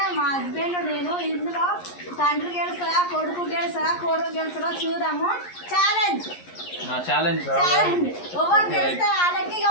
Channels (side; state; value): right; late; 11 ms